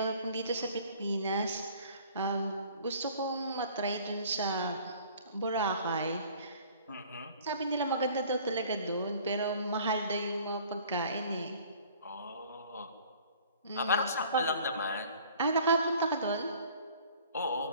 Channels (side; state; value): both; inverted; correlation -0.51